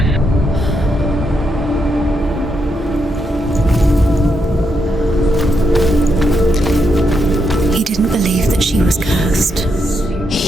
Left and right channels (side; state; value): both; normal; correlation 0.80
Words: He didn't believe that she was cursed.